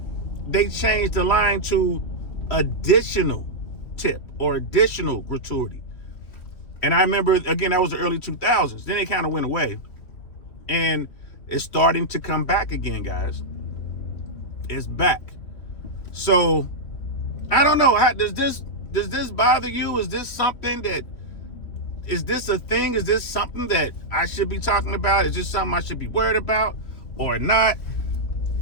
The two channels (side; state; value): right; late; 3.1 ms